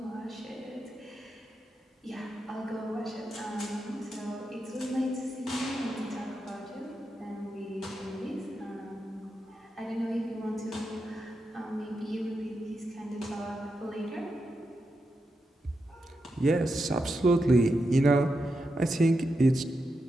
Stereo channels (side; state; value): both; normal; correlation 0.87